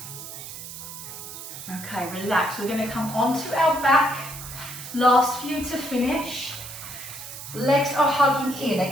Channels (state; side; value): noise; right; hiss, 11 dB below the sound